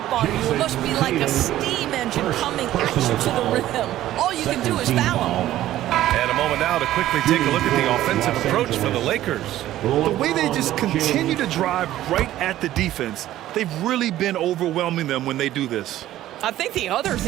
on you. It must be like a steam engine coming at you to the rim. All you can do is foul him. And a moment now to quickly take a look at the offensive approach for the Lakers. The way they just continue to drive right at the defense, they've really been overwhelming them when they do this. I think the other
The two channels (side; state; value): left; quieter; 13.9 dB